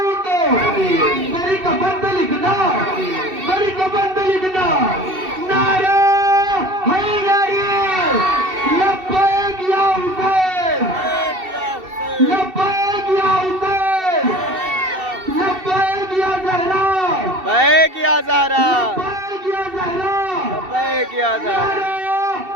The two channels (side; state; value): left; late; 2.7 ms